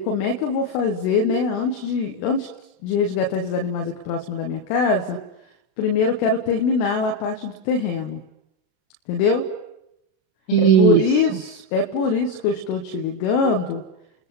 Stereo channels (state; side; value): late; right; 32 ms